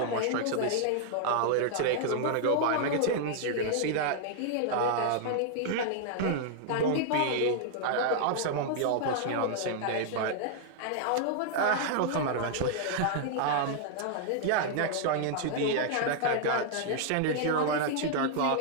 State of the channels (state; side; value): different; both; correlation -0.01